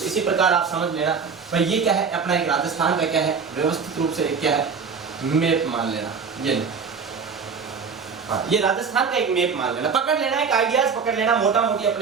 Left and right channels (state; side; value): quieter; left; 5.7 dB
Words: इसी प्रकार आप समझ लेना। भाई ये क्या है, अपना एक राजस्थान का क्या है, व्यवस्थित रूप से क्या है, मैप मान लेना। ये हाँ, ये राजस्थान का एक मैप मान लेना, पकड़ लेना, एक आइडियाज पकड़ लेना। मोटा मोटी